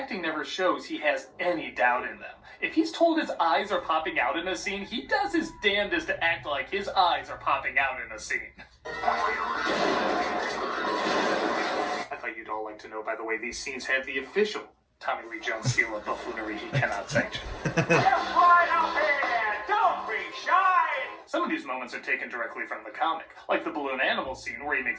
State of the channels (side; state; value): both; identical; correlation 1.00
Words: never shows he has any doubt in them. If he's told his eyes are popping out in a scene, he does his damnedest to act like his eyes are popping out in a scene. I thought you'd all like to know, by the way, these scenes have the official Tommy Lee Jones seal of buffoonery he cannot sanction. Just right up here. Don't be shy. Some of these moments are taken directly from the comic, like the balloon animal scene where he